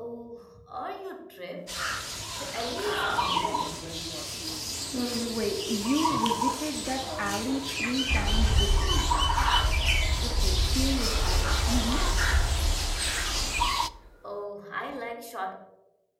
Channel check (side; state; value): both; identical; correlation 1.00